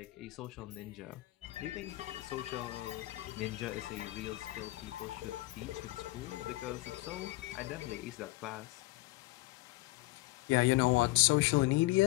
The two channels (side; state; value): right; quieter; 20.4 dB